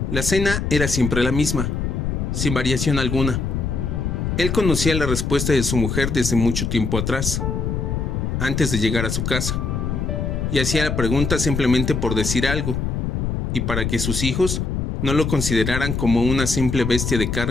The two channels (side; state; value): left; noise; rumble, 1 dB below the sound